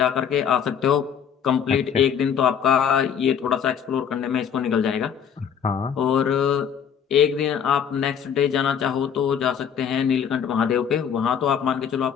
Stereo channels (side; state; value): right; quieter; 7.9 dB